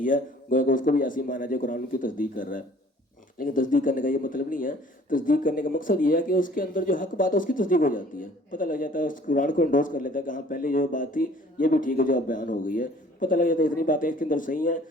ہے، گویا کہ اس کو بھی ایسی مانا جائے قرآن کی تصدیق کر رہا ہے. لیکن تصدیق کرنے کا یہ مطلب نہیں ہے. تصدیق کرنے کا مقصد یہ ہے کہ اس کے اندر جو حق بات ہے اس کی تصدیق ہو جاتی ہے، پتہ لگ جاتا ہے، اس قرآن کو انڈوز کر لیتا ہے کہ ہاں پہلے جو بات تھی یہ بھی ٹھیک ہے جو اب بیان ہو گئی ہے. پتہ لگ جاتا ہے اتنی باتیں اس کے اندر صحیح ہیں،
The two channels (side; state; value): both; normal; correlation 0.53